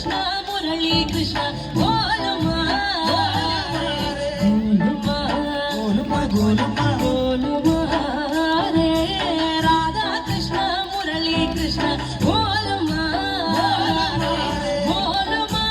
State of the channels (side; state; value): both; identical; correlation 1.00